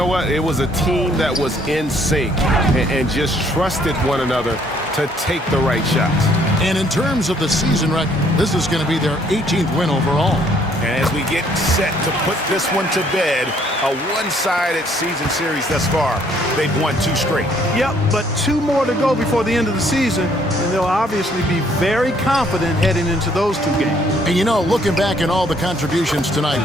what? It was a team that was in sync and just trusted one another to take the right shots. And in terms of the season record, this is going to be their 18th win overall. And as we get set to put this one to bed, a one-sided season series thus far, they've won 2 straight. Yep, but 2 more to go before the end of the season, and they'll obviously be very confident heading into those 2 games. And you know, looking back at all the contributions tonight,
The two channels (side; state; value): both; normal; correlation 0.64